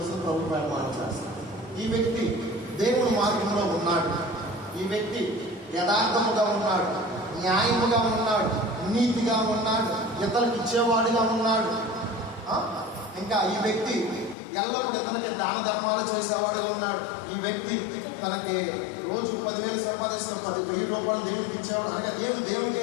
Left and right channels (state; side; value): drops out; right; at 14.4 s